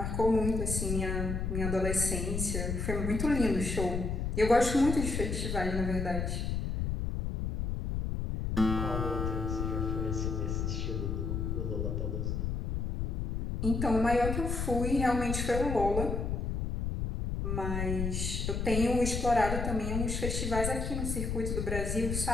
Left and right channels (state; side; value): noise; left; rumble, 1 dB below the sound